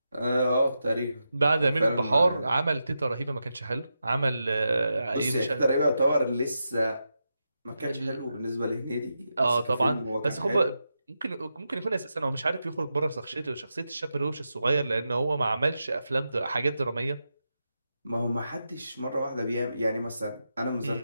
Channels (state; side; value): inverted; both; correlation -0.88